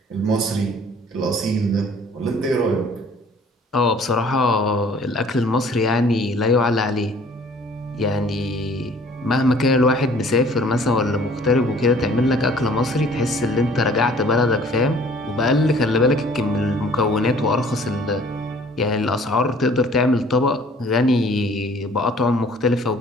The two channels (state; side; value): normal; both; correlation 0.54